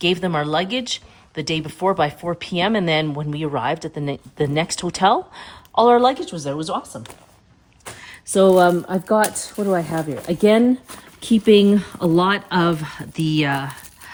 them our luggage the day before by 4 p.m. And then when we arrived at the next hotel, all our luggage was there. It was awesome. So I've got, what do I have here? Again, keeping a lot of the,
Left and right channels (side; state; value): both; identical; correlation 1.00